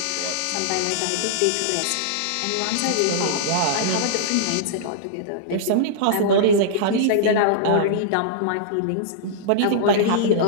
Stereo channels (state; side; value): different; both; correlation -0.02